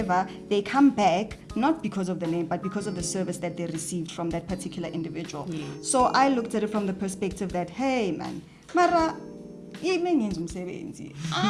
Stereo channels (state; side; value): identical; both; correlation 1.00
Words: they come back not because of the name, but because of the service that they received from that particular individual. Yes. So I looked at it from the perspective that, hey, man, Mara,